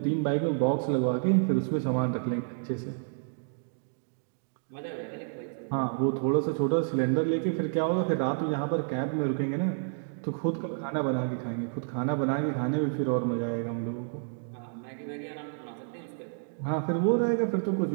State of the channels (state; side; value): silent; left; digital silence